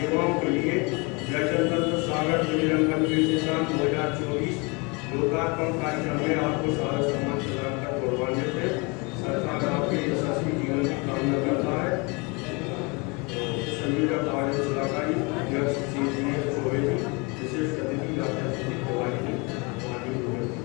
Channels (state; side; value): quieter; right; 29.3 dB